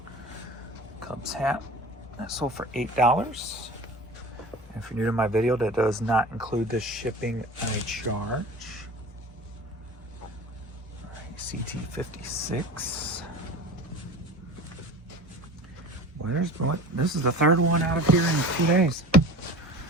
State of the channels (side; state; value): both; normal; correlation 0.37